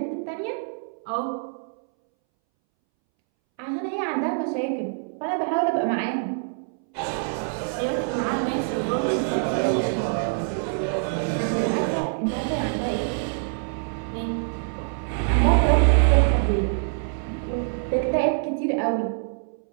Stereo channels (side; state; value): left; silent; 62 dB below the other